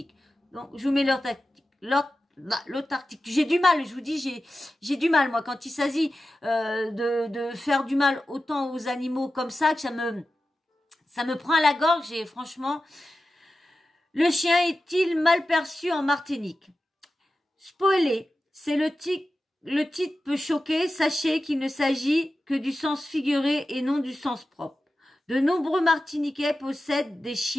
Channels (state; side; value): normal; both; correlation 0.93